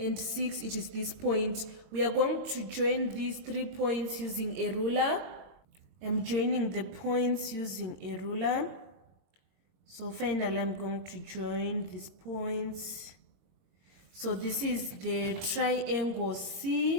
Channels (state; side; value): late; left; 22 ms